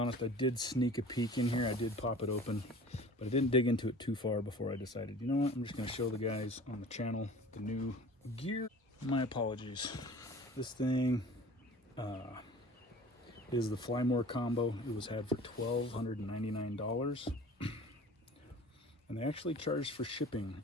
I did sneak a peek in here. I did pop it open, but I didn't dig into it too far before I decided, you know what, I'm just going to show the guys on the channel the new gear. My apologies. This thing is the Fly More combo. It was had for $1,299. And they actually charged for shipping,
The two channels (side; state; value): both; normal; correlation 0.43